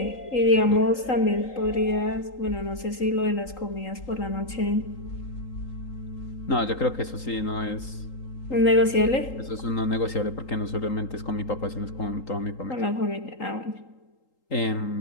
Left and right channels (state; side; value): late; right; 3.8 ms